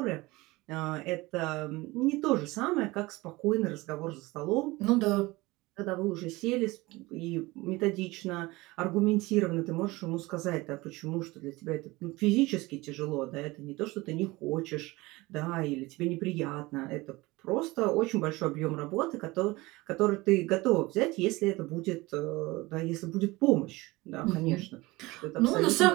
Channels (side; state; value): left; quieter; 21.4 dB